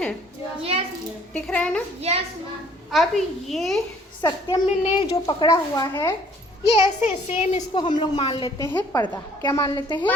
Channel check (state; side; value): normal; both; correlation 0.58